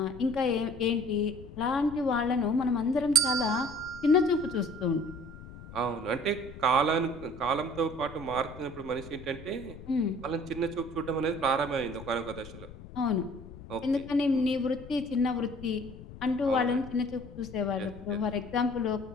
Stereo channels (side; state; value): left; noise; rumble, 15 dB below the sound